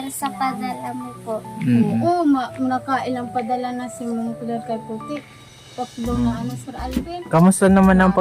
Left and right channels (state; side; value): identical; both; correlation 1.00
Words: sa padala mo po. Mm. Oo, nakailang padala na si Ma'am Claire kay Puti. Tatlo na ano, Sir Alvin. Kamusta naman ang